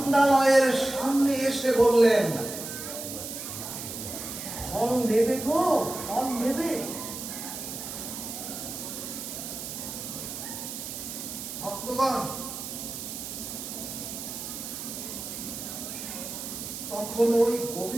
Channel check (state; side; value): noise; right; hiss, 7 dB below the sound